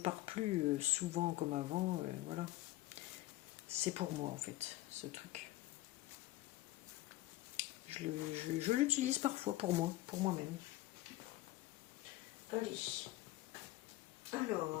plus souvent comme avant, voilà. C'est pour moi en fait, ce truc. Je l'utilise parfois pour moi, pour moi-même. Allez.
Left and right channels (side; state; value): right; quieter; 16.8 dB